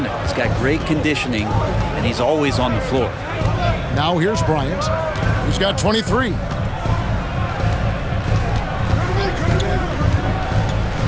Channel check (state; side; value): identical; both; correlation 1.00